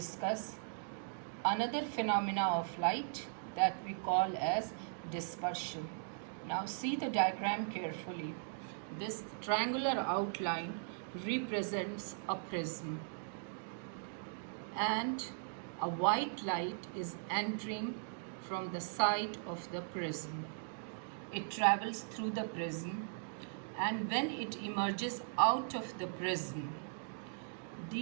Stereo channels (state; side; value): silent; left; digital silence